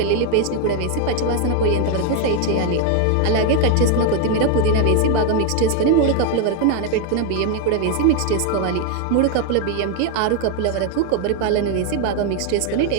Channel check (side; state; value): both; different; correlation 0.01